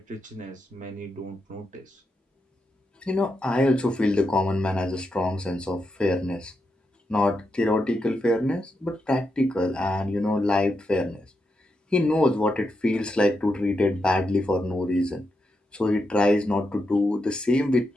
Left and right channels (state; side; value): normal; both; correlation 0.85